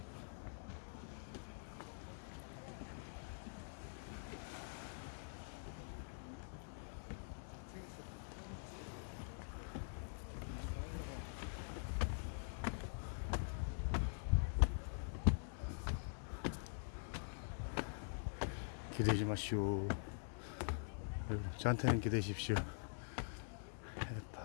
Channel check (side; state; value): right; silent; digital silence